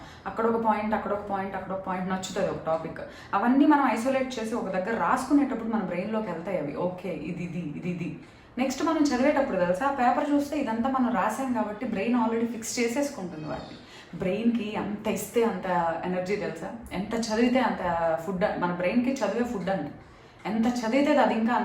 అక్కడ ఒక పాయింట్ అక్కడ ఒక పాయింట్ అక్కడ ఒక పాయింట్ నచ్చుతుంది ఒక టాపిక్. అవన్నీ మనం ఐసోలేట్ చేసి ఒక దగ్గర రాసుకునేటప్పుడు మన బ్రెయిన్లోకి వెళ్తాయి అవి. ఓకే ఇది నెక్స్ట్ మనం చదివేటప్పుడు తెలుసా, ఆ పేపర్ చూస్తే ఇదంతా మనం రాసాం కాబట్టి బ్రెయిన్ ఆల్రెడీ ఫిక్స్ చేసేసుకుంటుంది వాటిని. బ్రెయిన్కి అంత ఇస్తే అంత ఎనర్జీ తెలుసా, ఎంత చదివితే అంత ఫుడ్. మన బ్రెయిన్కి చదివే ఫుడ్ అండి, ఎంత చదివితే అది ఇంకా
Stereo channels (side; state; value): both; identical; correlation 1.00